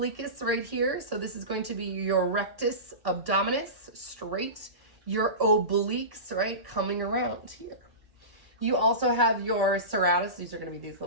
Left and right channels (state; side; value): late; left; 1.1 ms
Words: right here. So this is going to be your rectus abdominis, straight, your obliques, right, coming around here. You also have your serratus. These are going to be these